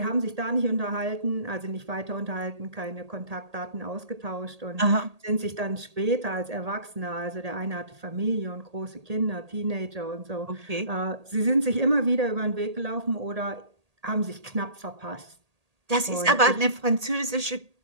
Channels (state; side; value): late; left; 1.8 ms